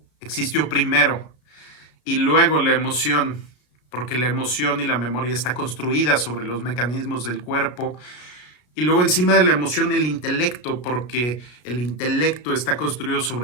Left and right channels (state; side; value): late; right; 33 ms